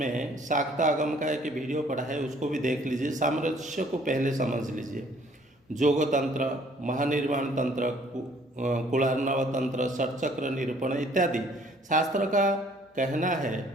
शाक्ता आगम का एक वीडियो पड़ा है, उसको भी देख लीजिए। सामरस्य को पहले समझ लीजिए। जोग तंत्र, महानिर्वाण तंत्र, कुलार्णव तंत्र, षटचक्र निरूपण इत्यादि शास्त्र का कहना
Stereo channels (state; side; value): normal; both; correlation 0.59